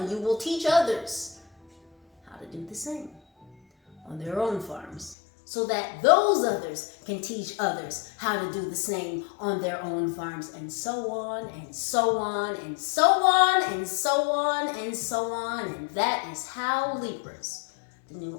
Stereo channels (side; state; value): right; drops out; at 5.2 s